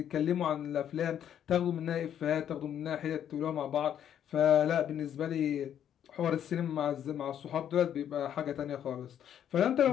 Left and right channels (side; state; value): right; quieter; 9.8 dB